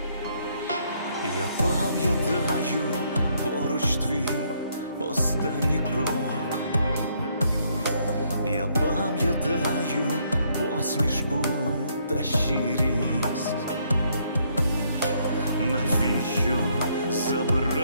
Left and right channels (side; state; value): both; inverted; correlation -0.71